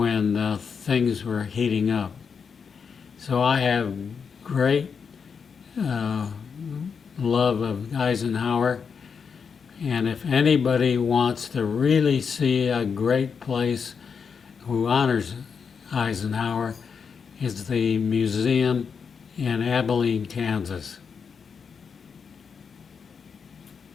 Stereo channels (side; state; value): right; quieter; 6.1 dB